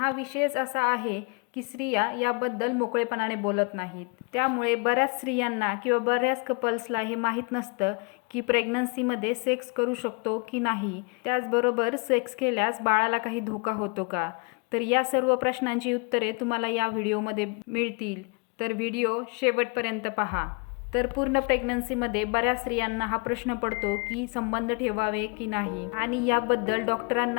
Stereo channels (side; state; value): right; quieter; 33.3 dB